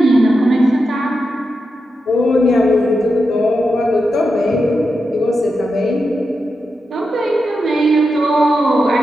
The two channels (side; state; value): both; normal; correlation 0.88